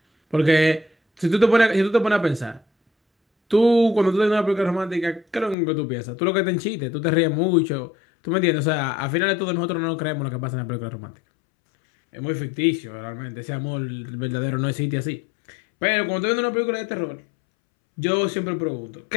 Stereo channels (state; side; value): drops out; right; at 5.6 s